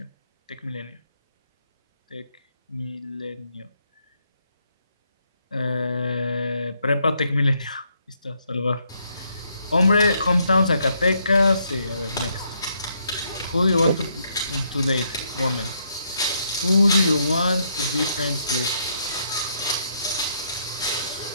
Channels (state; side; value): inverted; both; correlation -0.74